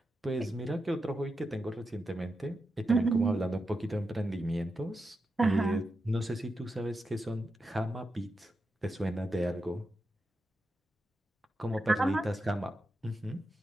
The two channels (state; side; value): normal; both; correlation 0.88